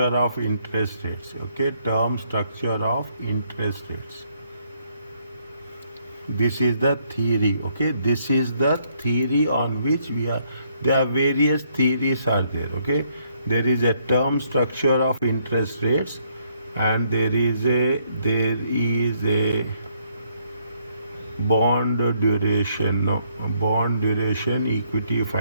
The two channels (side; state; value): both; inverted; correlation -0.70